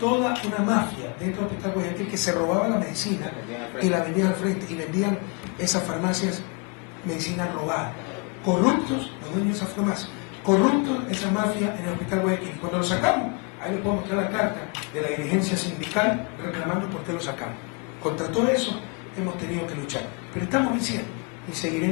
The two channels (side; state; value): right; quieter; 34.0 dB